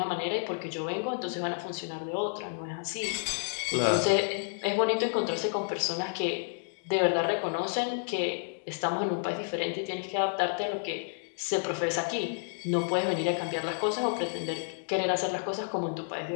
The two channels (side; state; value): right; silent; digital silence